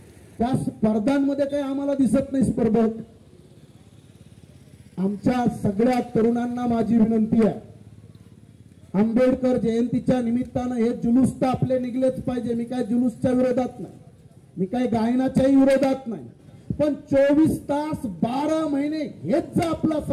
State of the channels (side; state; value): both; identical; correlation 1.00